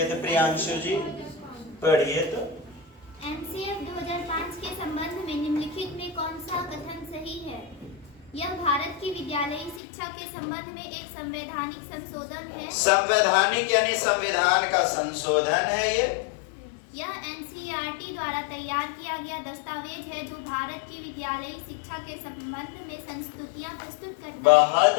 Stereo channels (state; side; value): drops out; right; at 9.8 s